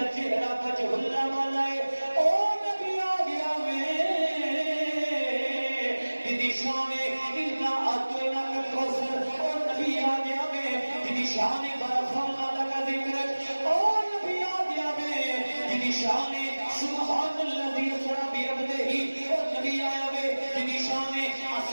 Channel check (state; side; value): inverted; both; correlation -1.00